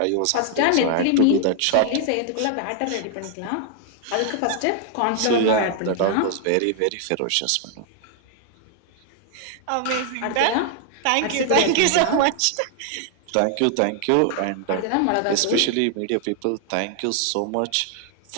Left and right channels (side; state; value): both; different; correlation 0.00